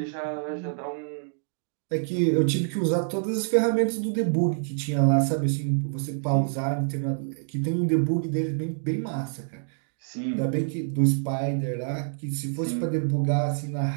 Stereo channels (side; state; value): left; silent; digital silence